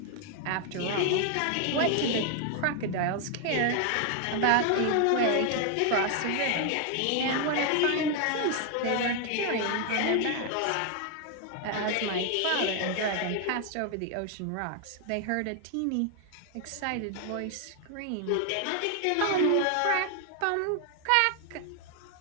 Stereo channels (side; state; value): both; different; correlation 0.00